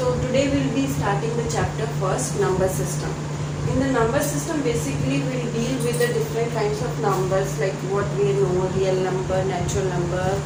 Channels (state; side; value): identical; both; correlation 1.00